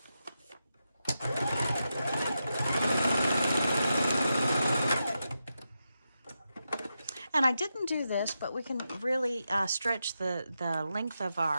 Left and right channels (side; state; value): both; inverted; correlation -0.88